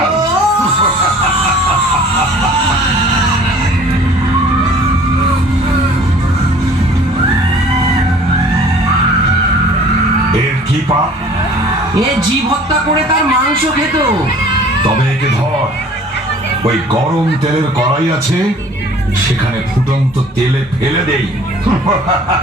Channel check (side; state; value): both; normal; correlation 0.50